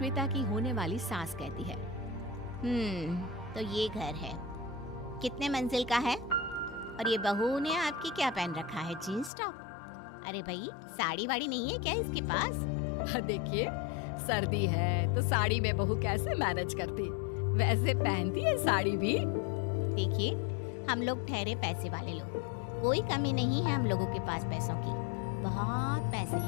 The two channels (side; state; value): right; drops out; at 9.3 s